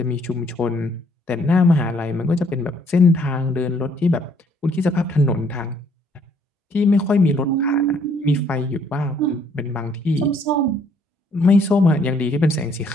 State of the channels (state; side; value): normal; both; correlation 0.65